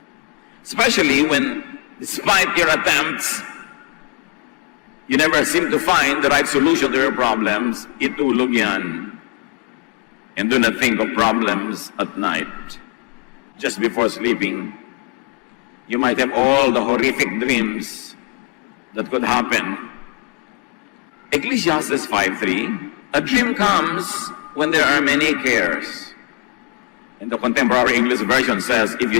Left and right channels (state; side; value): quieter; right; 29.0 dB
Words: Especially when, despite your attempts, you never seem to find the right solution to your problems, itulog yan. And do not think of problems at night. Just before sleeping, you might have all the horrific dreams that could happen. Ecclesiastes 5:3, a dream comes when there are many cares. And the contemporary English version says, if